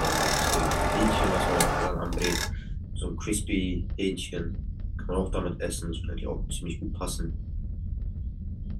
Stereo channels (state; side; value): identical; both; correlation 1.00